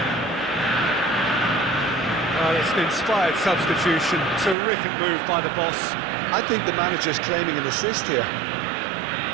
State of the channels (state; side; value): drops out; left; at 4.5 s